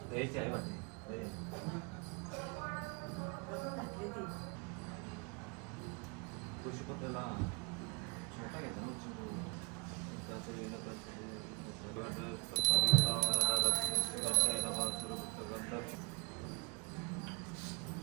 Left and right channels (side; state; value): left; quieter; 31.2 dB